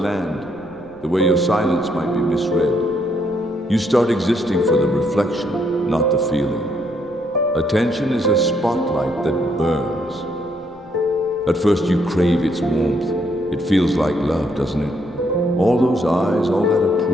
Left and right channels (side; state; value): left; noise; rumble, 29 dB below the sound